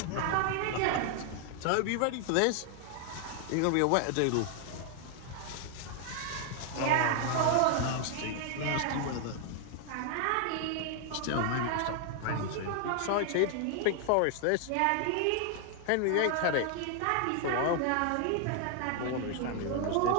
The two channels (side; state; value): both; different; correlation 0.00